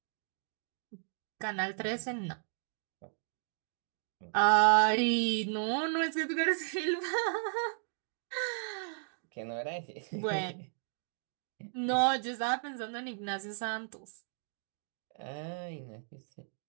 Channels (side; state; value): left; silent; digital silence